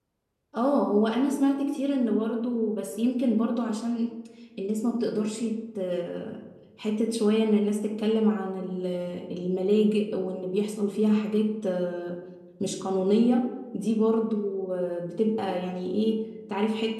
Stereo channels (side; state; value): both; identical; correlation 1.00